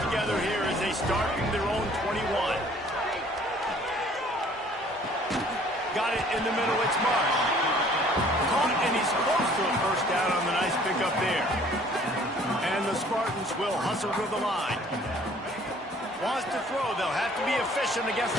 together here as they start from their own 21. Got it in the middle. It's Mark. Caught, and he's close to a 1st down on the nice pickup there. And the Spartans will hustle to the line. Wants to throw. They'll have to be efficient against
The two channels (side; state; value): both; normal; correlation 0.56